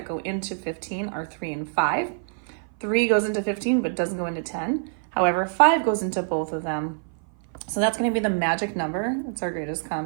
go into 15 are 3 and 5. 3 goes into 15, but doesn't go into 10. However, 5 goes into both of them. So that's going to be the magic number. It's our greatest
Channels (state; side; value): silent; left; 57 dB below the other